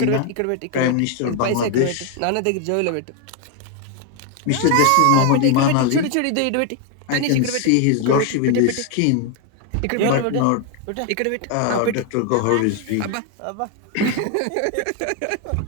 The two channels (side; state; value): both; different; correlation 0.01